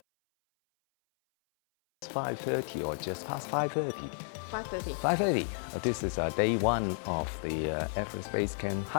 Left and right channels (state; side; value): silent; right; 56 dB below the other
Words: It's 5:30 or just past 5:30? 5:30. 5:30. This is day one of the Everest Base Camp